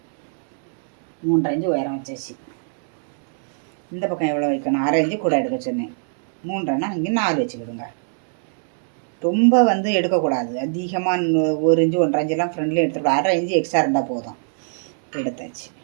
3.5 இன்ச்சு உயரம் வச்சாச்சு. இந்த பக்கம் எவ்வளோ வைக்கணும், 1/2 இன்ச்சு கூட எடுக்க சொன்னேன். 3.5னா இங்கே 4 வச்சுக்கிடுங்க. ரொம்ப வந்து எடுக்கக்கூடாது. அதிகமாக 1 இன்ச்சு 1.5 இன்ச்செல்லாம் ஃப்ரெண்ட்லேயே எடுத்துக்கூடாது. 1/2 இன்ச்சு எக்ஸ்ட்ரா இருந்தால் போதும். எடுத்தாச்சு.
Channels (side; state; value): left; silent; 65 dB below the other